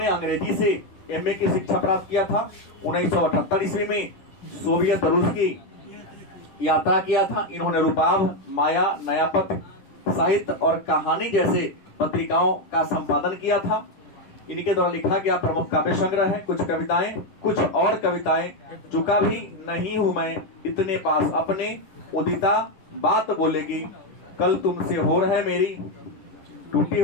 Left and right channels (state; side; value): late; right; 10 ms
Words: अंग्रेजी से एमए की शिक्षा प्राप्त किया था। 1978 ईस्वी में सोवियत रूस की यात्रा किया था। इन्होंने रूपाभ, माया, नयापथ, साहित्य और कहानी जैसे पत्रिकाओं का संपादन किया था। इनके द्वारा लिखा गया प्रमुख काव्य संग्रह है कुछ कविताएं, कुछ और कविताएं। चुका भी नहीं हूं मैं इतने पास अपने, उदिता बात बोलेगी, कल तुमसे हो रहा है मेरी, टूटी